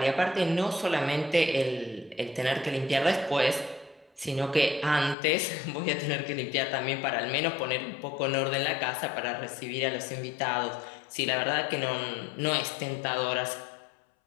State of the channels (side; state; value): right; drops out; at 5.2 s